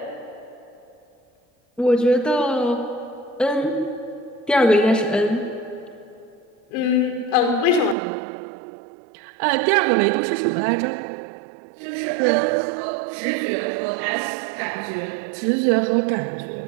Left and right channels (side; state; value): left; drops out; at 8.0 s